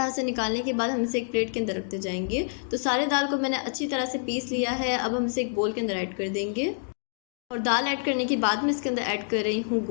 से निकालने के बाद हम इसे एक प्लेट के अंदर रखते जाएंगे। तो सारे दाल को मैंने अच्छी तरह से पीस लिया है। अब हम इसे एक बोल के अंदर ऐड कर देंगे और दाल ऐड करने के बाद में इसके अंदर ऐड कर रही हूँ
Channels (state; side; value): silent; right; digital silence